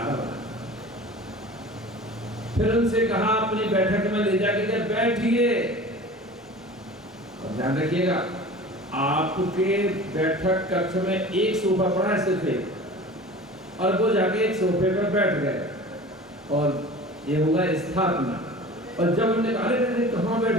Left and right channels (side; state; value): both; normal; correlation 0.39